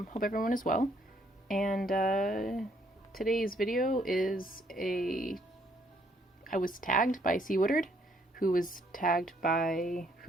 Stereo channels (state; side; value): normal; both; correlation 0.68